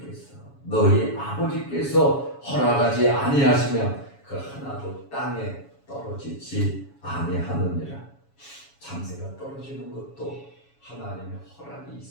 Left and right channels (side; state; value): right; late; 7.2 ms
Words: 아버지께서 허락하지 아니하시면 그 하나도 땅에 떨어지지 아니하느니라. 참새가 떨어지는 것도 하나님의 허락이